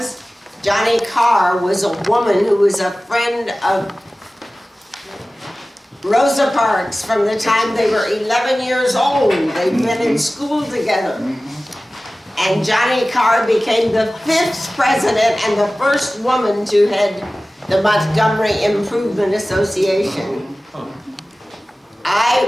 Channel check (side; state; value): both; normal; correlation 0.97